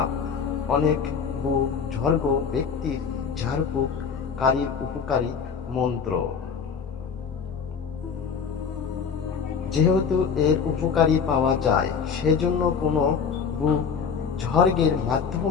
অনেক বুজুর্গ ব্যক্তির ঝাড়ফুঁক কারীর উপকারী মন্ত্র। যেহেতু এর উপকারী পাওয়া যায়, সেজন্য কোনো বুজুর্গের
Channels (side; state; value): right; quieter; 6.3 dB